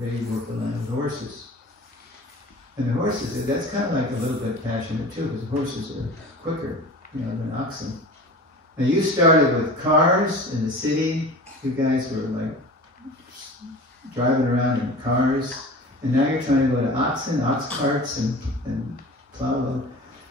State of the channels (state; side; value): normal; both; correlation 0.38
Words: They worked the land with the horses. And the horses, that's kind of like a little bit passionate too, because horses are quicker, than oxen. And you started with cars in the city. You guys were like driving around in cars. And now you're trying to go to oxen, ox carts, and plow.